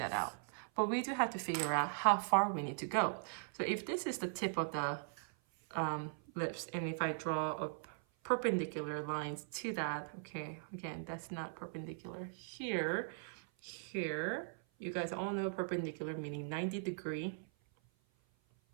out. But we do have to figure out how far we need to go. So if this is the tip of the lips, and if I draw a perpendicular lines to that, okay, again, that's not perpendicular. Here, you guys all know perpendicular meaning 90-degree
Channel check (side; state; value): left; silent; 51 dB below the other